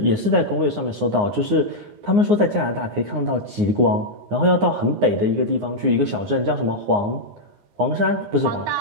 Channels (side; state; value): left; late; 9.7 ms